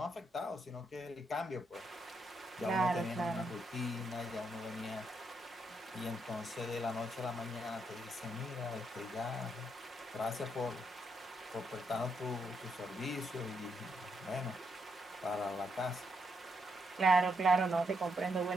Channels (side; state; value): both; normal; correlation 0.79